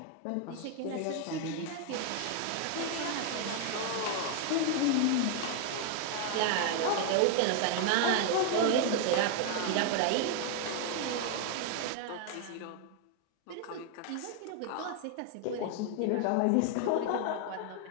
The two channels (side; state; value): both; different; correlation 0.00